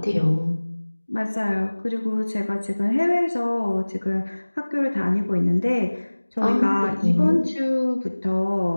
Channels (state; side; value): inverted; both; correlation -1.00